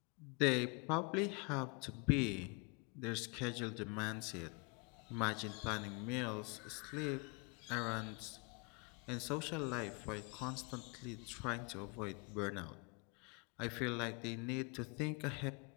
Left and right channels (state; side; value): quieter; right; 32.3 dB